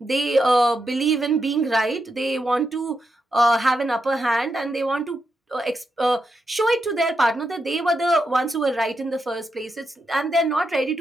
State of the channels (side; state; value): both; normal; correlation 0.85